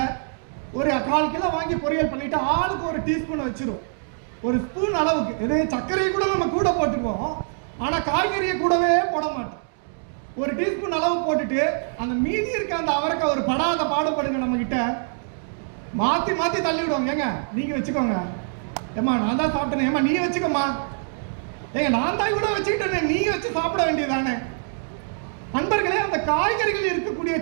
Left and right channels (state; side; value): silent; left; digital silence